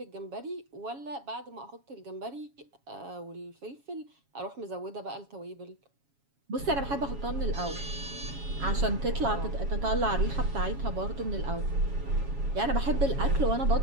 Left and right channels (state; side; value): late; left; 7.2 ms